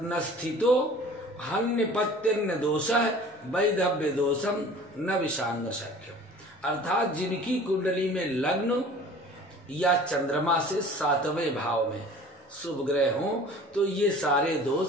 स्थितो हन्यपत्यन्न दोषः वैधव्य दोषम न विषांग शक्यम। अर्थात जिनकी कुंडली में लग्न या चंद्रमा से 7वें भाव में शुभ ग्रह हो तो ये सारे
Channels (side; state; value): both; normal; correlation 0.45